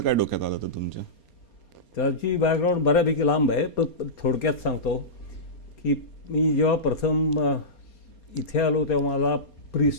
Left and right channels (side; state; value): right; late; 4.3 ms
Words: काय डोक्यात आलं होतं तुमच्या? त्याची बॅकग्राऊंड बऱ्यापैकी लांब आहे, पण थोडक्यात सांगतो की मी जेव्हा प्रथम इथे आलो तेव्हा माझा